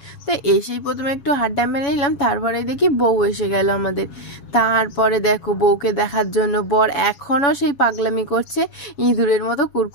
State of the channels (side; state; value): right; late; 7.0 ms